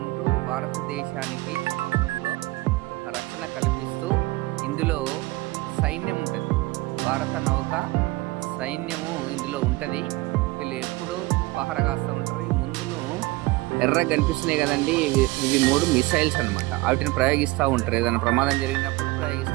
ఉంటూ భారతదేశానికి సముద్రంలో రక్షణ కల్పిస్తూ, ఇందులో సైన్యం ఉంటుంది, భారత నౌక సైన్యము ఇందులో ఉంటుంది. వీళ్ళు ఎప్పుడూ పహర కాస్తూ ఉంటారు. ముందును ఎర్రగా కనిపిస్తున్నాయి కదండి, ఇవి 3 మిసైల్స్ అనమాట. వాటిని ప్రయోగిస్తూ ఉంటారు. ఏదైనా ప్రమాదం జరిగినప్పుడు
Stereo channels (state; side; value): quieter; left; 21.1 dB